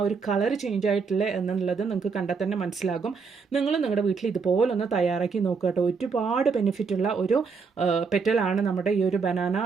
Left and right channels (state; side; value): quieter; left; 5.2 dB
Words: ഒരു കളർ ചേഞ്ച് ആയിട്ടുള്ളത് എന്നുള്ളത് നിങ്ങൾക്ക് കണ്ടാൽ തന്നെ മനസ്സിലാകും. നിങ്ങൾ നിങ്ങളുടെ വീട്ടിൽ ഇതുപോലൊന്ന് തയ്യാറാക്കി നോക്കുക കേട്ടോ. ഒരുപാട് ബെനിഫിറ്റുള്ള ഒരു പെറ്റലാണ് നമ്മുടെ ഈ ഒരു ബനാന